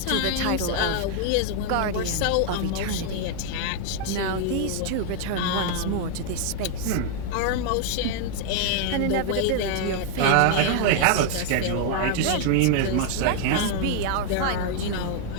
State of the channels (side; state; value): both; different; correlation 0.00